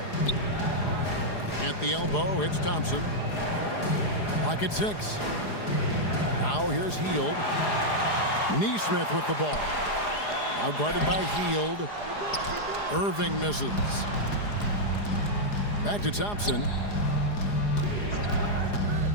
At the elbow, it's Thompson. Clock at 6. Now here's Hield. Neesmith with the ball. Now guarded by Hield. Irving misses. Back to Thompson.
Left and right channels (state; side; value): late; right; 4.9 ms